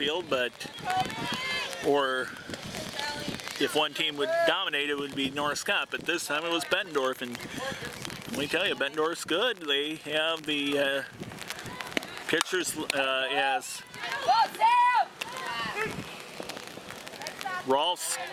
but or if one team would dominate, it would be North Scott. But this time it was Bettendorf, and let me tell you, Bettendorf's good. They have the pitchers as Rolfs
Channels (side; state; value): both; identical; correlation 1.00